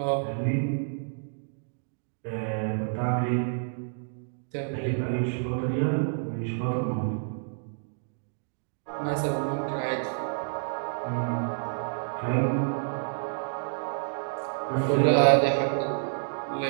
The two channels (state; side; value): silent; left; digital silence